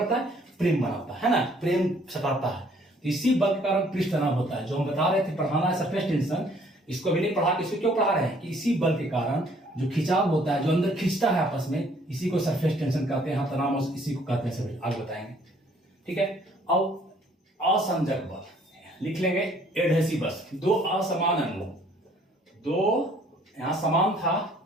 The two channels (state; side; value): normal; both; correlation 0.61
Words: है, प्रेम बनाता है ना, प्रेम सटाता है। तो इसी बल के कारण पृष्ठ तनाव होता है, जो हम बता रहे थे, पढ़ाना है सरफेस टेंशन, इसको भी नहीं पढ़ा, इसको क्यों पढ़ा रहे हैं कि इसी बल के कारण जो खिंचाव होता है, जो अंदर खींचता है आपस में, इसी को सरफेस टेंशन कहते हैं, तनाव इसी को कहते हैं, सब आगे बताएंगे। ठीक है। अब असंजक बल लिख लेंगे, एडहेसिवस, दो असमान अणु, दो यहां समान था,